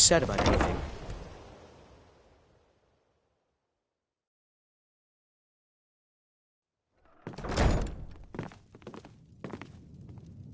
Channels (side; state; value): both; identical; correlation 1.00